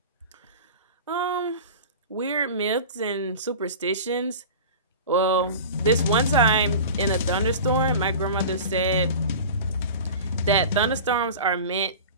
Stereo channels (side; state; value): both; inverted; correlation -0.34